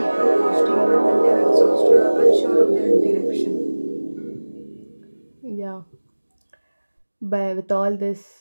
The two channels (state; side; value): inverted; both; correlation -1.00